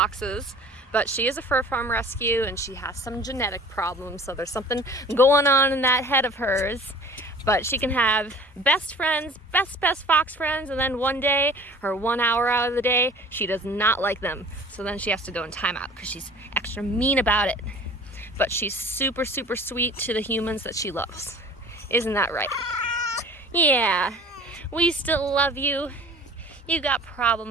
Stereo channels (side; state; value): both; normal; correlation 0.46